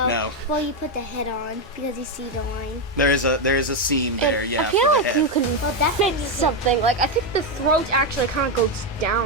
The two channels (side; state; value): both; normal; correlation 0.06